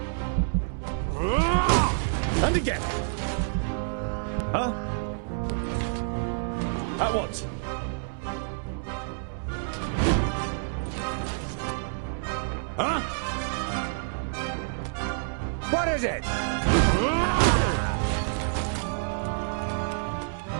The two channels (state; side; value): silent; left; 59 dB below the other